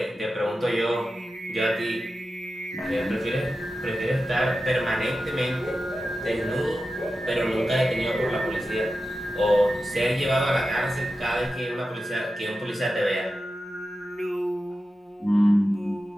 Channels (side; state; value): both; normal; correlation 0.92